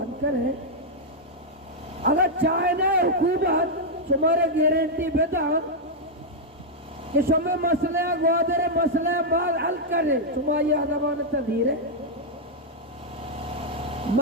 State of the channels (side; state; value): both; normal; correlation -0.03